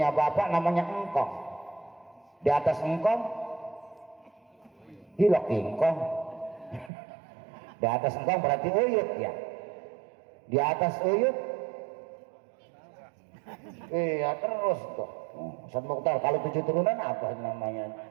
bapak namanya engkong. Di atas engkong hilok ingkong. Di atas engkong berarti uyut ya. Di atas uyut iya terus tuh. Ustaz Mukhtar, kalau 7 turunan apa namanya?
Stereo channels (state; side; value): drops out; left; at 6.9 s